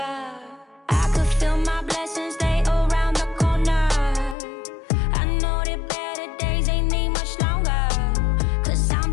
I could feel my blessings, they around the corner. I know that better days ain't need much longer. 'Cause I'm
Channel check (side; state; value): right; drops out; at 4.4 s